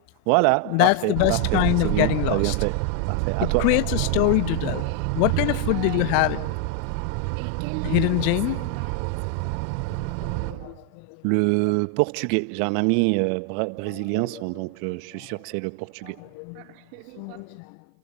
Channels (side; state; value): both; different; correlation 0.01